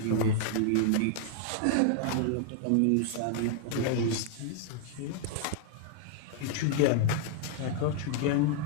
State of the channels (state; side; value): different; both; correlation -0.01